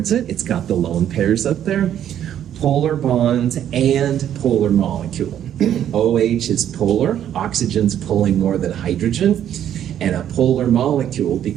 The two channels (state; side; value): quieter; left; 10.4 dB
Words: it. It's got the lone pairs up there. Polar bonds and polar molecule. OH is polar. Oxygen's pulling more than hydrogen. And a polar molecule